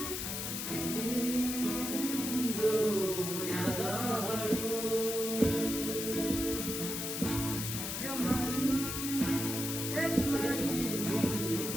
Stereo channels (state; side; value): noise; left; hiss, 3 dB below the sound